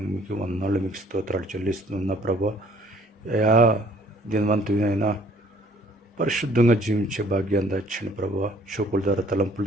మీకు వందనాలు, మీకు స్తోత్రాలు చెల్లిస్తున్నా ప్రభా. అయా, దినవంతునైనా పరిశుద్ధంగా జీవించే భాగ్యాన్ని దాచండి ప్రభా. చూపుల ద్వారా, తలంపుల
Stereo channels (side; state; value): both; normal; correlation 0.58